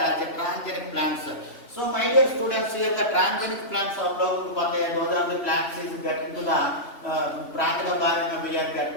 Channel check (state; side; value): late; right; 3.2 ms